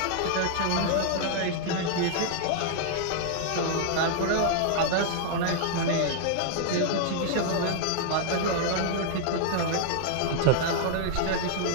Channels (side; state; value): both; different; correlation -0.01